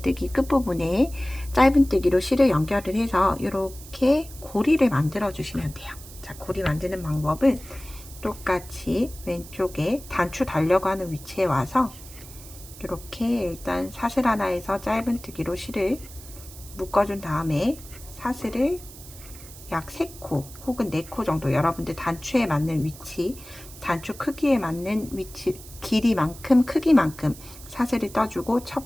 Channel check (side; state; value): right; noise; hiss, 17 dB below the sound